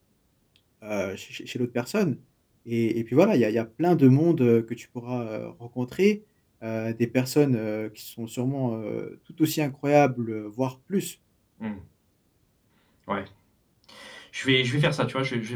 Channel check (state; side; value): identical; both; correlation 1.00